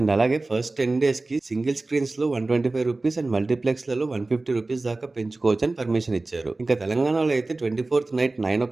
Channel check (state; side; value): quieter; left; 3.2 dB